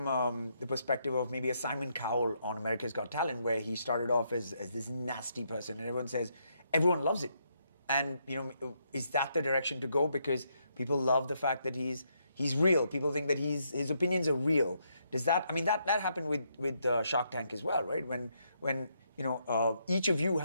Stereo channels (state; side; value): inverted; both; correlation -0.76